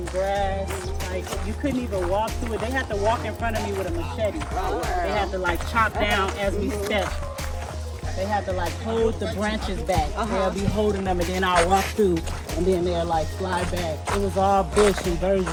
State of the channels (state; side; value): identical; both; correlation 1.00